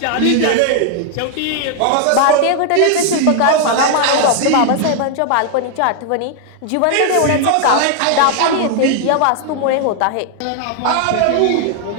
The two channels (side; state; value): both; different; correlation 0.00